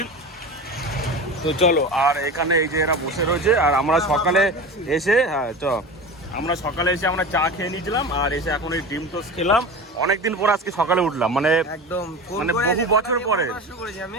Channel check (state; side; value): normal; both; correlation 0.30